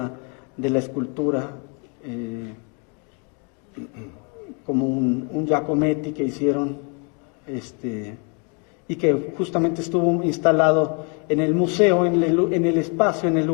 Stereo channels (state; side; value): quieter; right; 36.3 dB